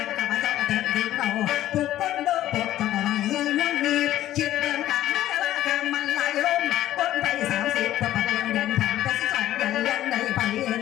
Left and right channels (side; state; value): right; quieter; 13.4 dB